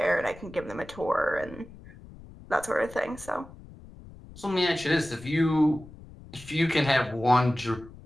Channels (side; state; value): left; noise; rumble, 19 dB below the sound